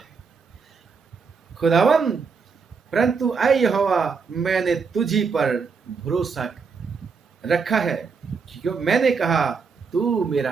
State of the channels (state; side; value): quieter; left; 5.3 dB